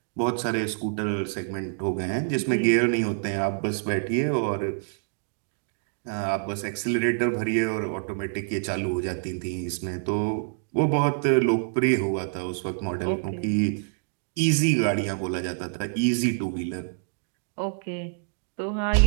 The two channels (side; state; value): left; silent; 60 dB below the other